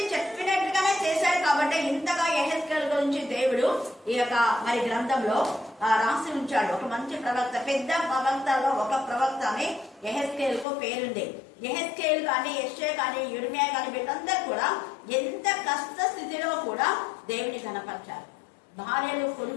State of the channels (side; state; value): right; drops out; at 10.7 s